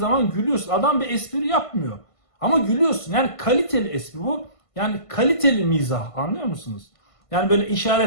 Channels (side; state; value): right; late; 1.5 ms